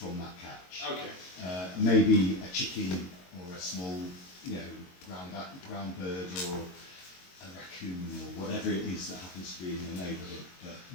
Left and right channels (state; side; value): late; right; 22 ms